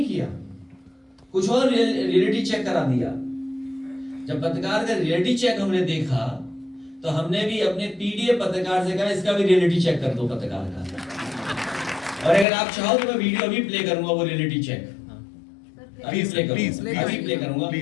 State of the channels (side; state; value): right; drops out; at 12.5 s